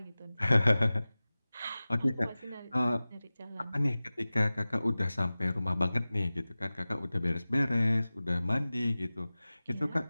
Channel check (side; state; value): both; inverted; correlation -0.97